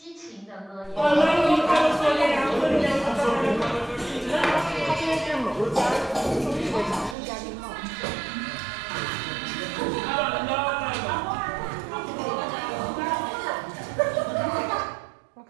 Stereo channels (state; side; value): drops out; left; at 7.2 s